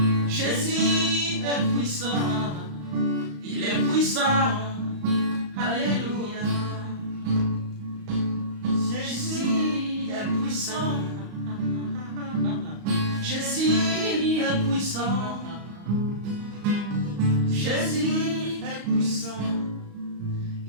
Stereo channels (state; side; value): late; left; 35 ms